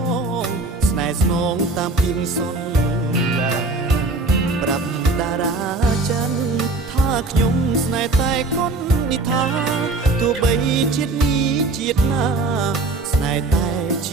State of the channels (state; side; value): quieter; left; 3.2 dB